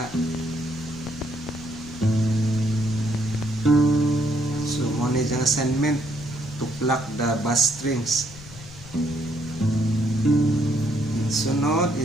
So mo na yung assignment to pluck the bass strings. Sunod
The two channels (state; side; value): noise; left; rumble, 17 dB below the sound